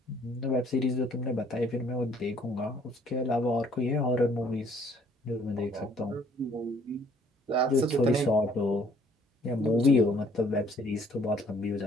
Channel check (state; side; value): normal; both; correlation 0.61